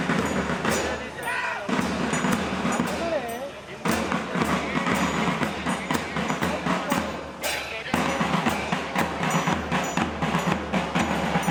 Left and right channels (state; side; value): identical; both; correlation 1.00